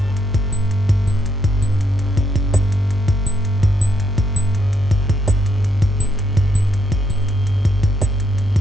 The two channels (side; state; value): both; normal; correlation 0.76